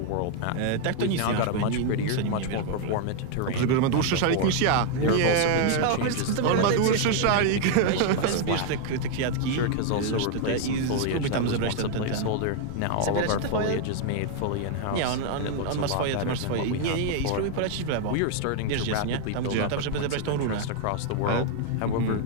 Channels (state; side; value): different; both; correlation 0.00